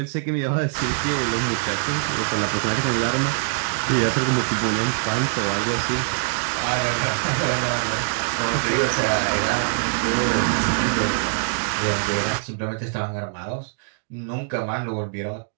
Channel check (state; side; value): silent; left; digital silence